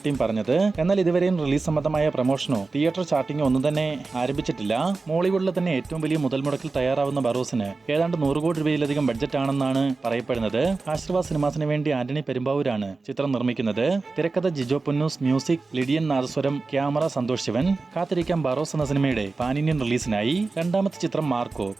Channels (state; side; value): quieter; left; 3.9 dB